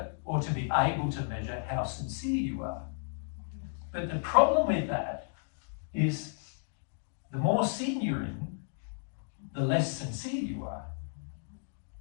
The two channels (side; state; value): right; silent; digital silence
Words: or to be able to measure, how sincere you are. But the problem with that is the more sin you're in, the less sincere you are.